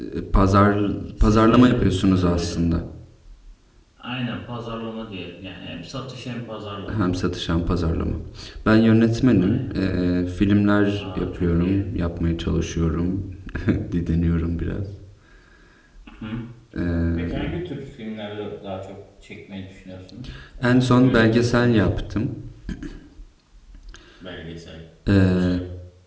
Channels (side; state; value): both; identical; correlation 1.00